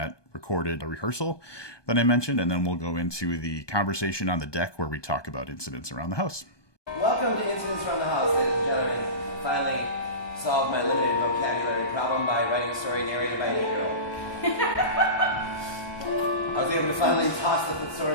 recorded rehearsal that I mentioned, and then we'll go into the conversation on the deck where we talk about Incidents Around the House. Welcome to Incidents Around the House, ladies and gentlemen. Finally solved my limited vocabulary problem by writing a story narrated by an 8-year-old. I was able to finally toss the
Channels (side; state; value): right; late; 1.2 ms